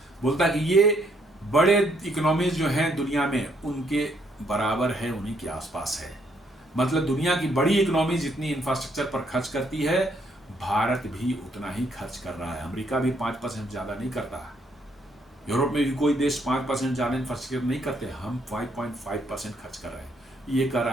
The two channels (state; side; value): normal; both; correlation 0.70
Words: बोलता है कि ये बड़े इकोनॉमीज जो हैं दुनिया में उनके बराबर है, उन्हीं के आसपास है। मतलब दुनिया की बड़ी इकोनॉमी जितनी इंफ्रास्ट्रक्चर पर खर्च करती है, भारत भी उतना ही खर्च कर रहा है। अमेरिका भी 5% ज़्यादा नहीं करता, यूरोप में भी कोई देश 5% ज़्यादा इंफ्रास्ट्रक्चर नहीं करते, हम 5.5% खर्च कर रहे हैं। ये कर